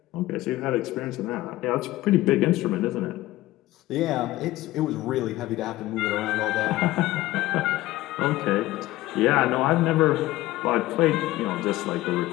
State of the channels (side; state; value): right; quieter; 17.0 dB